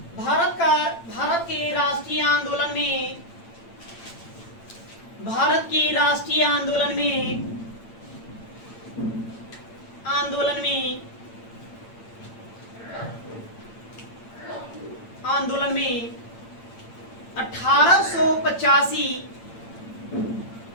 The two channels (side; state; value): right; late; 8.8 ms